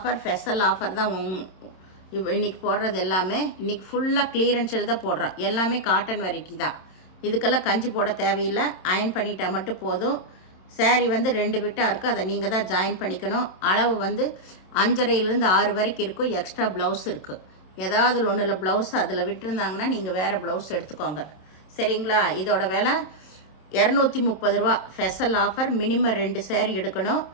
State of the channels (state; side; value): late; right; 27 ms